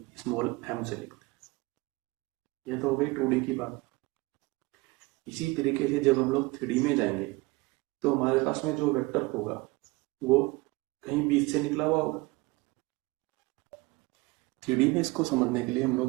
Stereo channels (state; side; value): quieter; left; 23.2 dB